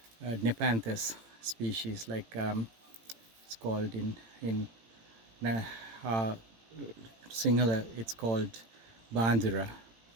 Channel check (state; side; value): late; left; 18 ms